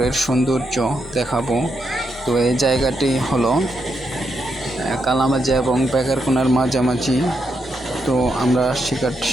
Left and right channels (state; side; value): normal; both; correlation 0.81